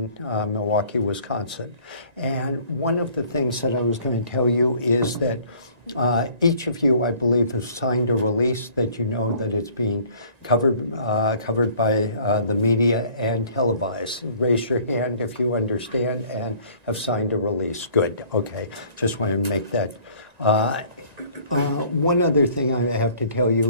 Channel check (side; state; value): left; late; 1.9 ms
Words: Milwaukee, Wisconsin. And one of the things that I was going to tell you is that each of you, I believe, have signed a release that you know that it's being covered by the media and televised. Raise your hand if you understand and have signed a release. Good. Okay. Just wanted to make that. One other thing I have to tell